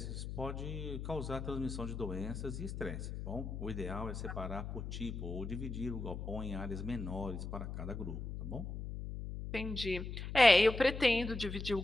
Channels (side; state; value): left; noise; hum, 6 dB below the sound